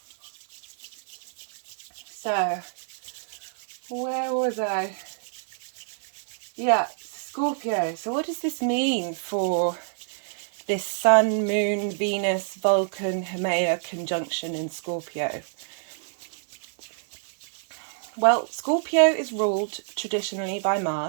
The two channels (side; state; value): left; silent; digital silence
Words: So where was I? Yeah, Scorpio. So what does this mean for this Sun, Moon, Venus, Vulcan, Haumea conjunction in Scorpio? Well, Scorpio is ruled traditionally by